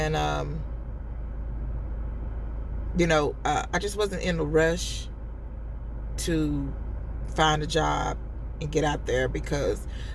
I just wasn't in a rush to find a job and get out there because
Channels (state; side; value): identical; both; correlation 1.00